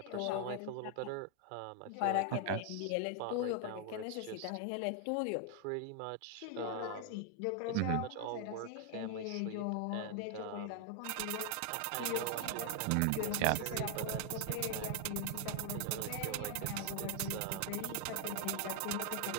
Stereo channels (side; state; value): both; different; correlation 0.00